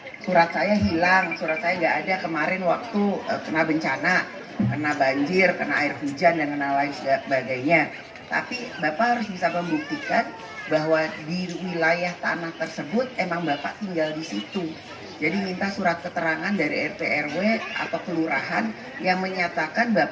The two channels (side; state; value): both; identical; correlation 1.00